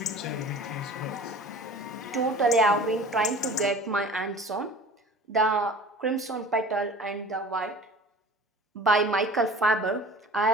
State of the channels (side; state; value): both; normal; correlation 0.42